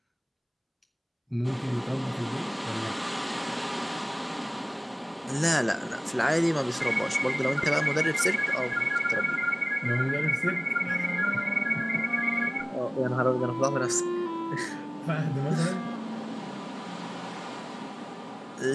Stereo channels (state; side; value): identical; both; correlation 1.00